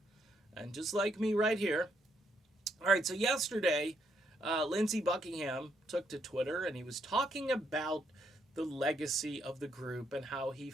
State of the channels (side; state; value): both; normal; correlation 0.74